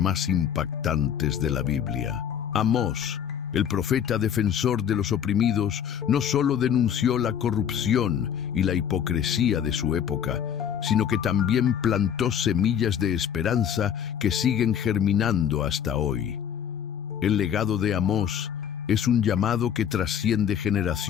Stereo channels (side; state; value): right; quieter; 8.7 dB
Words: impactantes de la Biblia. Amós, el profeta defensor de los oprimidos, no solo denunció la corrupción y la hipocresía de su época, sino que también plantó semillas de esperanza que siguen germinando hasta hoy. El legado de Amós es un llamado que trasciende